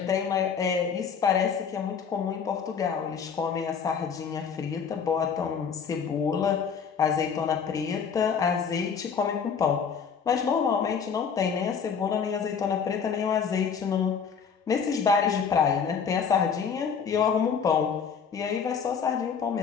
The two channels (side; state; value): right; quieter; 6.6 dB